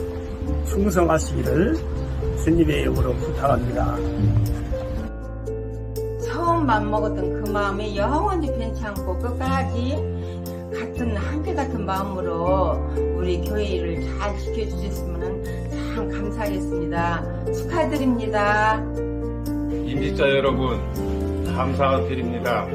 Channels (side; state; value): both; identical; correlation 1.00